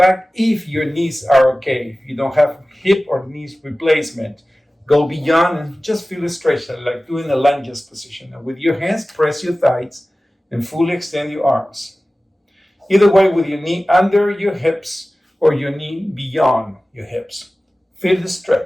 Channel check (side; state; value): both; normal; correlation 0.97